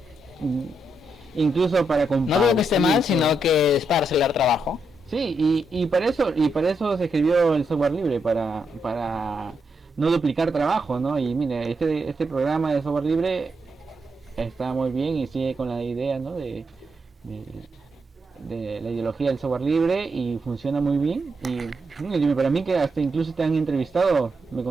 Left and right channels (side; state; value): both; normal; correlation 0.82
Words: incluso para No digo que esté mal, compartir. sino que es para acelerar trabajo. Sí, y para eso se escribió el software libre, para no duplicar trabajo, ¿no? Y mire, este programa de software libre está muy bien y sigue con la idea, ¿no? De, de la ideología del software libre y funciona muy bien. Y para mí que hasta incluso te han entrevistado,